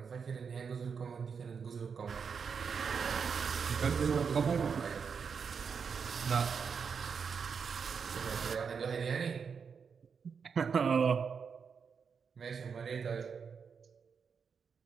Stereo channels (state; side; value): quieter; left; 6.1 dB